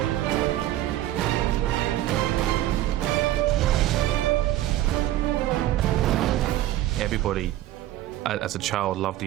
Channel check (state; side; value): quieter; left; 14.2 dB